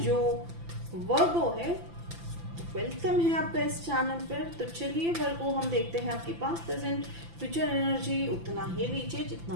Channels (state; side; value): late; left; 5.9 ms